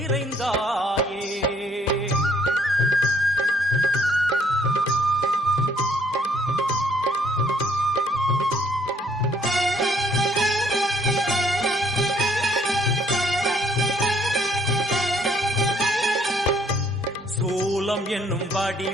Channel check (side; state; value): both; normal; correlation 0.65